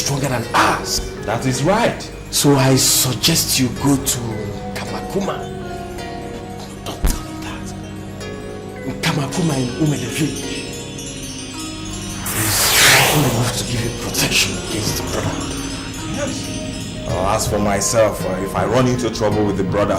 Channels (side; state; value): both; identical; correlation 1.00